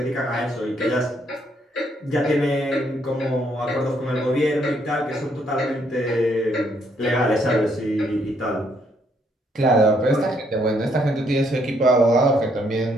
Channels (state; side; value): normal; both; correlation 0.71